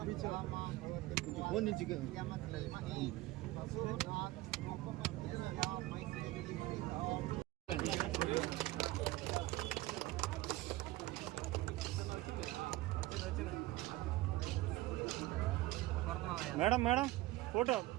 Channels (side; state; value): left; quieter; 17.9 dB